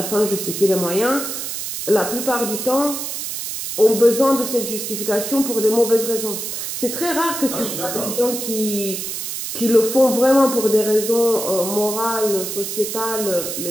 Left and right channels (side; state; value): right; noise; hiss, 5 dB below the sound